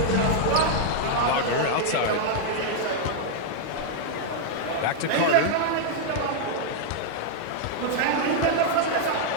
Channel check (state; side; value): different; both; correlation -0.01